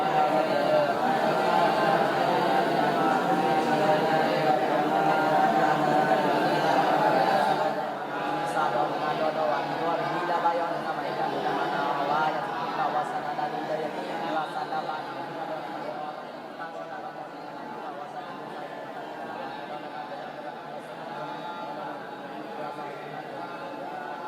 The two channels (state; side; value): identical; both; correlation 1.00